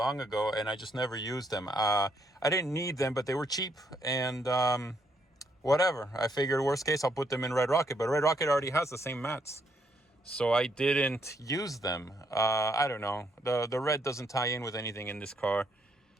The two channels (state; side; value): normal; both; correlation 0.73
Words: ago, and I just never used them. I didn't need them, but they were cheap, and whatever. I figured worst case, I'll put them in Red Rocket, but Red Rocket already has the same mats. So I didn't use them. I don't know. The red doesn't tie in with anything in this car.